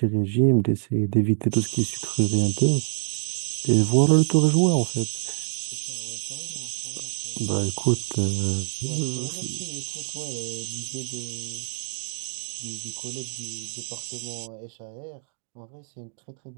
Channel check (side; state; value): left; silent; digital silence